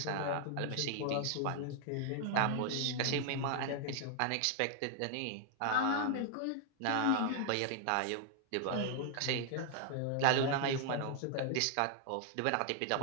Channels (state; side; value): different; both; correlation 0.00